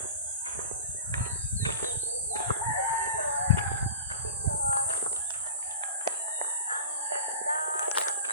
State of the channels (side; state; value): both; inverted; correlation -0.34